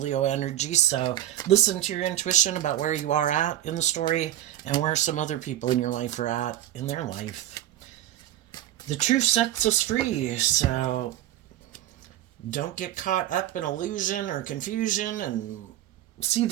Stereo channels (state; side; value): quieter; left; 12.9 dB